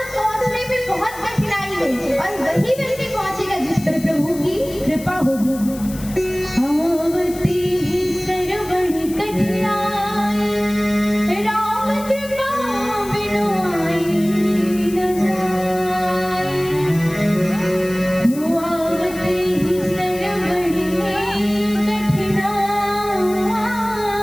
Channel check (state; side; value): noise; left; hiss, 16 dB below the sound